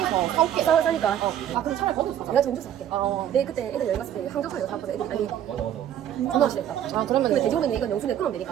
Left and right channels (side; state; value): left; quieter; 10.6 dB